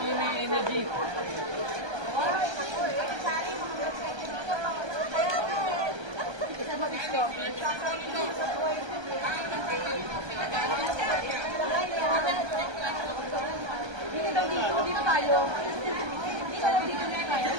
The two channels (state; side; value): late; left; 1.3 ms